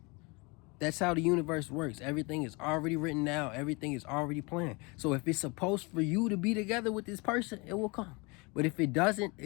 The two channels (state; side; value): quieter; right; 28.0 dB